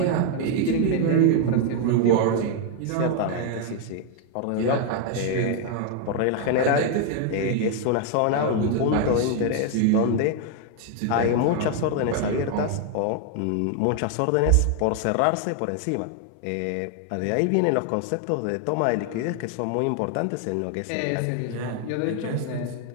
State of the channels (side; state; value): both; different; correlation 0.00